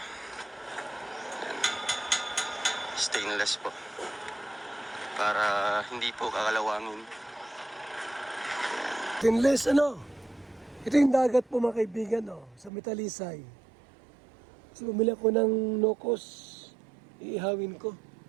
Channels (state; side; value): drops out; left; at 12.7 s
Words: Ayan. Stainless po. Para hindi po kakalawangin. Stainless Ito yung dagat po mga kaibigan sa Metalisay. So bumili ako ng nokos, iihawin ko.